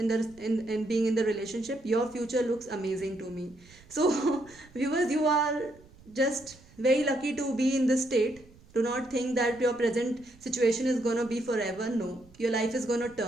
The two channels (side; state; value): right; noise; rumble, 25 dB below the sound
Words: being in the relationship. Your future looks amazing to me. So viewers, you are just very lucky to be in this state. Do not think that your present situation is going to be forever. No, your life is going to